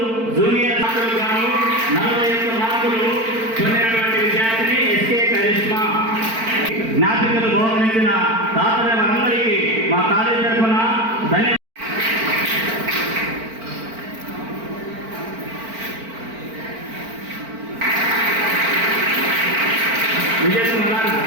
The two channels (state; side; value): late; left; 4.5 ms